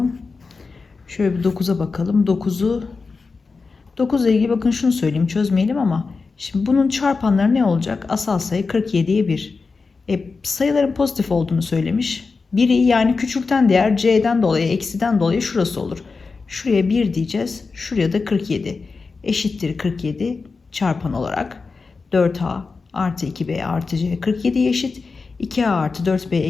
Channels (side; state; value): right; quieter; 4.4 dB